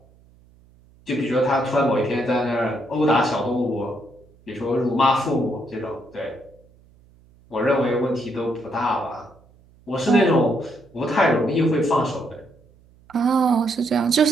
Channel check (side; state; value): right; noise; hum, 29 dB below the sound